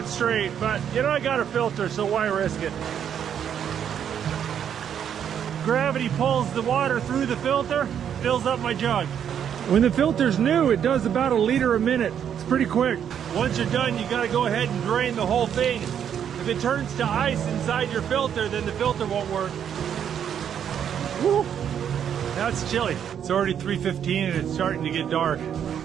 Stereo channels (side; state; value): left; quieter; 8.8 dB